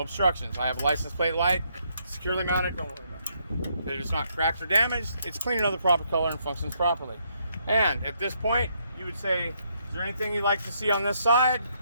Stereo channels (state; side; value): inverted; both; correlation -0.73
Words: obstructions. I have a license plate light, securely mounted. Don't worry about it. It is not cracked or damaged. It's clean and of the proper color and functions properly. And at this point, you would say, is there anything you'd like to see on this side?